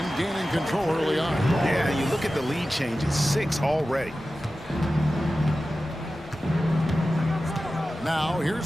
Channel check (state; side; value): normal; both; correlation 0.94